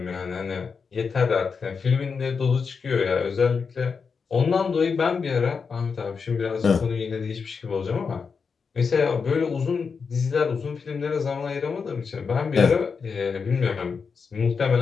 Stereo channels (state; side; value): quieter; right; 5.5 dB